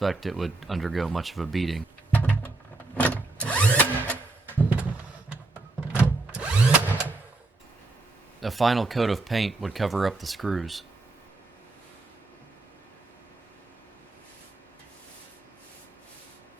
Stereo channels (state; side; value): quieter; left; 3.2 dB